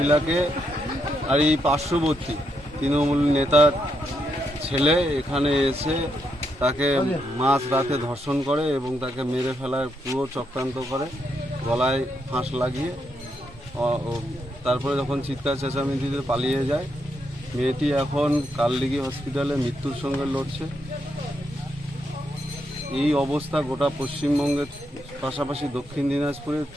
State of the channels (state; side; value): normal; both; correlation 0.80